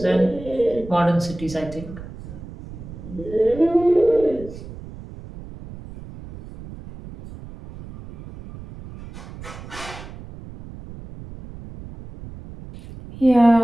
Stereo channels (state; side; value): noise; right; rumble, 15 dB below the sound